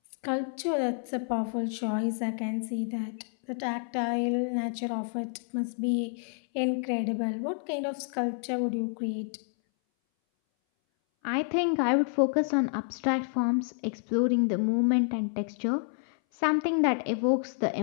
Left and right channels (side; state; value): right; silent; 58 dB below the other